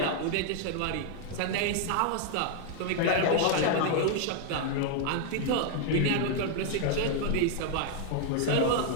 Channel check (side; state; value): both; different; correlation 0.00